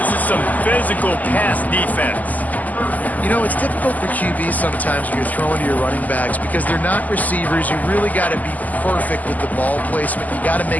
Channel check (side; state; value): right; late; 0.079 ms